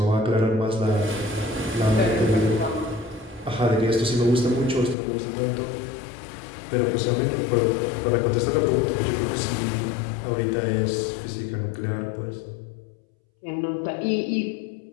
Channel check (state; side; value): drops out; right; at 5.0 s